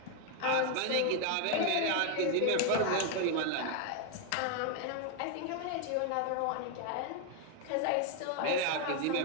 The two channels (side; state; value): both; different; correlation 0.01